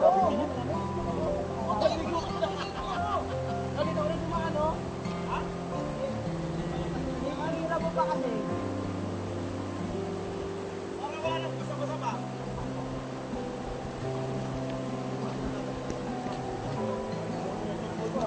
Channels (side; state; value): both; identical; correlation 1.00